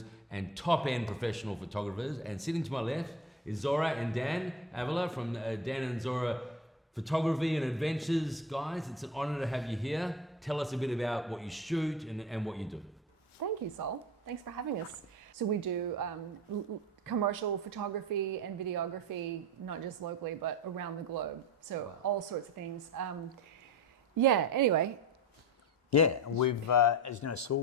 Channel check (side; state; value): both; normal; correlation 0.31